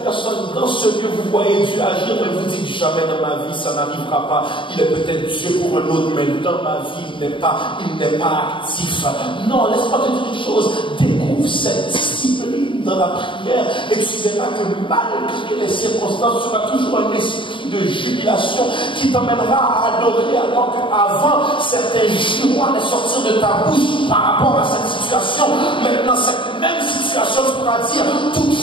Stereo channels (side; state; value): right; late; 0.24 ms